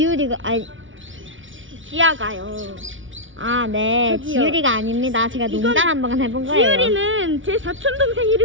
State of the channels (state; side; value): late; left; 0.56 ms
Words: 아니, 지아가요. 아, 네. 저기요. 지유리가 아닙니다. 제가 이건 농담 한번 해본 거예요. 지유리는 제 사촌 동생